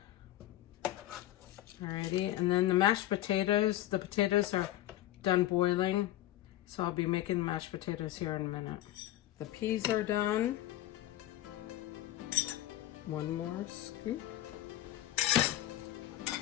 Alrighty, and then the mashed potatoes, the potatoes are done boiling, so I'll be making mashed potatoes here in a minute. The peas are done. One more scoop.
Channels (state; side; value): quieter; right; 14.3 dB